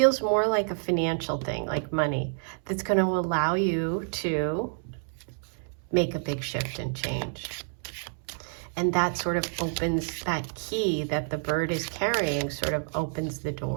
more like a financial thing, like money, that's going to allow you to make a big shift and change. And that sort of opens, that key that the bird is carrying sort of opens the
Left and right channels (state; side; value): silent; left; 59 dB below the other